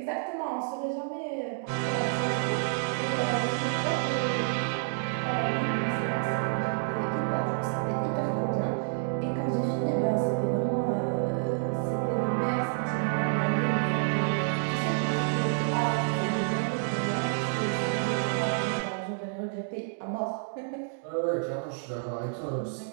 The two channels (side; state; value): left; silent; digital silence